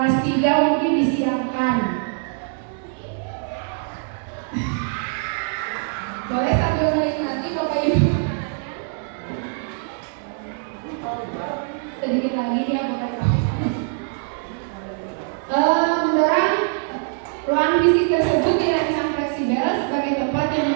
3 mungkin disiapkan. Boleh sambil menikmati Bapak Ibu. Sedikit lagi ya Bapak Ibu. Mendorong ruang fisik tersebut dirancang fleksibel sebagai tempat yang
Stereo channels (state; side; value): silent; left; 64 dB below the other